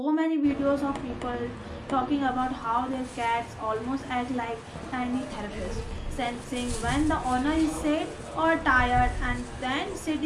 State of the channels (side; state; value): both; identical; correlation 1.00